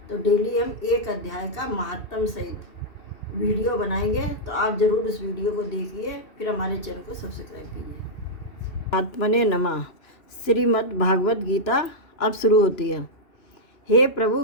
तो डेली हम एक अध्याय का महात्म सहित वीडियो बनाएंगे, तो आप ज़रूर उस वीडियो को देखिए, फिर हमारे चैनल को सब्सक्राइब कीजिए। आत्मने नमः। श्रीमद् भागवत गीता अब शुरू होती है। हे प्रभु,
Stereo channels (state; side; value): late; right; 2.7 ms